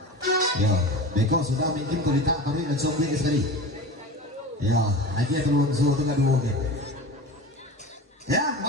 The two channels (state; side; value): normal; both; correlation 0.32